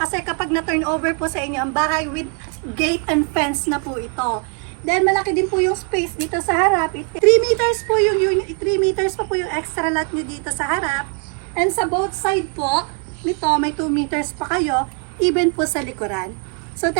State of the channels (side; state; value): left; quieter; 38.4 dB